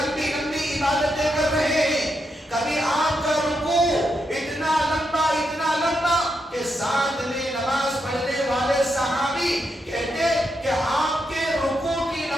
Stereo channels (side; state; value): both; normal; correlation 0.82